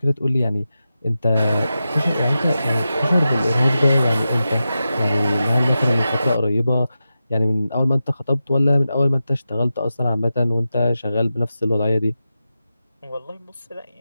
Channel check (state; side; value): inverted; both; correlation -0.91